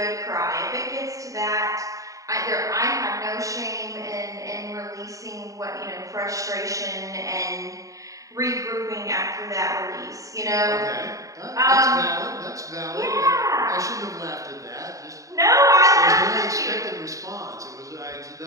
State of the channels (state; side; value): late; left; 0.16 ms